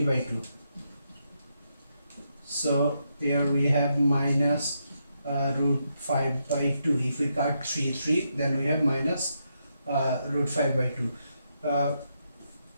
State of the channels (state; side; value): inverted; both; correlation -0.81